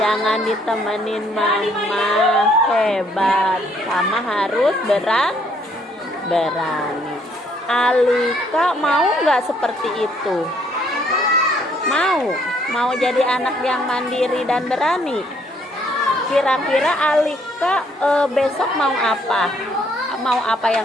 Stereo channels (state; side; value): normal; both; correlation 0.66